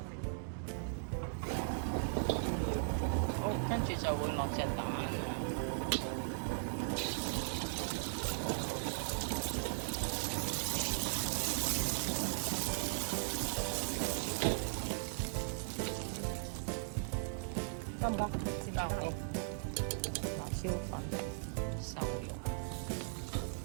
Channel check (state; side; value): silent; left; digital silence